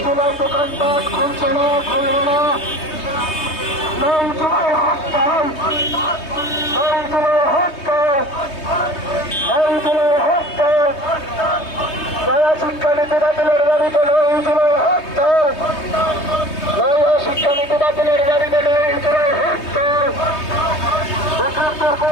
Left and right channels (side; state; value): right; late; 3.2 ms